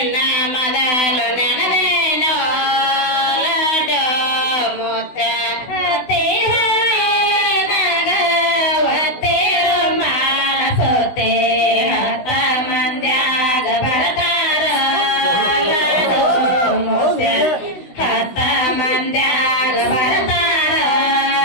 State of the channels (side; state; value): right; late; 16 ms